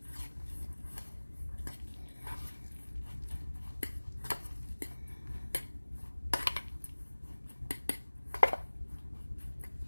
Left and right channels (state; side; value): inverted; both; correlation -1.00